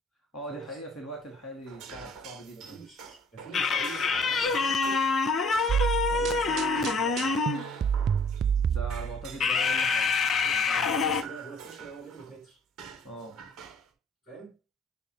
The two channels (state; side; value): normal; both; correlation 0.56